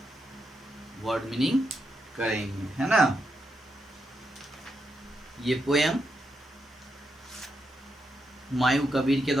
वर्ड मीनिंग करेंगे, है ना। ये पोएम हुमायूं कबीर के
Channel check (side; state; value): both; normal; correlation 0.83